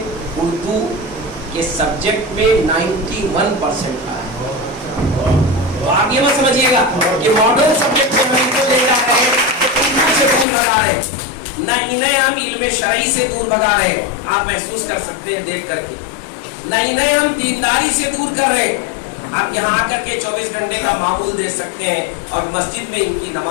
اردو کے سبجیکٹ میں 91% رہا ہے. تو آپ یہ مت سمجھیے گا کہ ماڈرن سبجیکٹ کو ہم کو لے جا رہے ہیں اردو سے دور بھگا رہے ہیں, نہ انہیں ہم علم شرعی سے دور بھگا رہے ہیں. آپ محسوس کر سکتے ہیں دیکھ کر کے, نہ انہیں ہم دینداری سے دور کر رہے ہیں. آپ یہاں آ کر کے 24 گھنٹے کا معمول دیکھ سکتے ہیں اور مسجد میں ان کی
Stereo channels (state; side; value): drops out; right; at 10.5 s